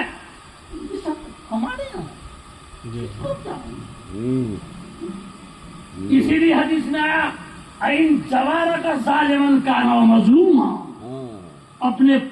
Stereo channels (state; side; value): identical; both; correlation 1.00